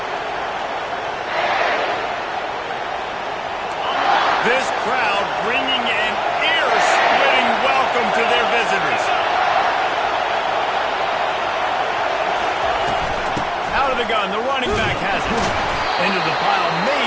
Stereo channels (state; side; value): identical; both; correlation 1.00